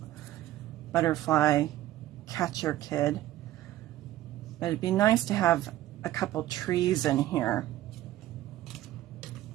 butterfly catcher kid. But it'd be nice to have a couple trees in here.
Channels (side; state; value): left; quieter; 14.5 dB